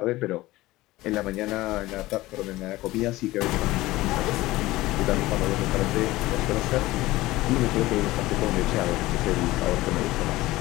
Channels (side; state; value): right; quieter; 18.2 dB